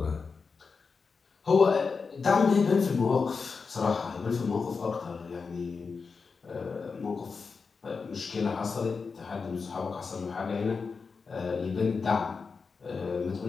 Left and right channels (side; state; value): right; quieter; 4.9 dB